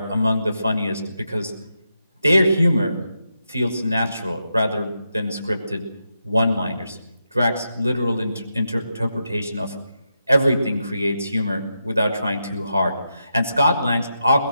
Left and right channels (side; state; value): both; inverted; correlation -0.85